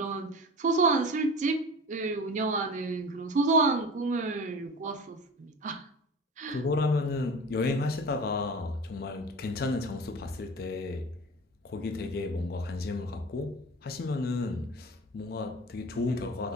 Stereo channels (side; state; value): both; normal; correlation 0.36